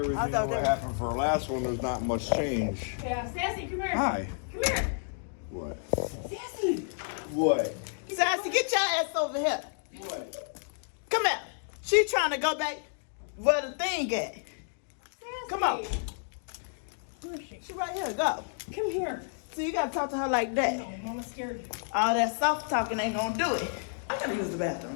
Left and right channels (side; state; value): right; silent; digital silence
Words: I to thought what that- happened for our last one, there's not much change. Yeah, Sassy, come here. Hi. Come here. What? Sassy. What? Sassy, get your ass over here. What? Come here. She trying to go back where the thing at. Sassy. Come on. Where is she? She right here. Go. Come here. So you gotta talk to her like that. No, Mama's scared. All that soft talking ain't gonna do it. I gotta use the